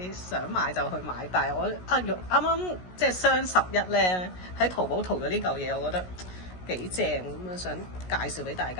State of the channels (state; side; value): late; right; 16 ms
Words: 想買就去買。但係我啱啱即係雙11咧，喺淘寶淘咗呢嚿嘢，我覺得幾正咁啊，想介紹俾大